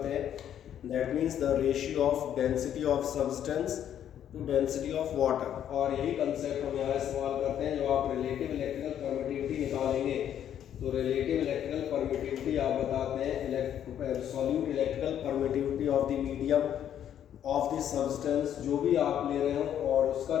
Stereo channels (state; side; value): quieter; right; 10.1 dB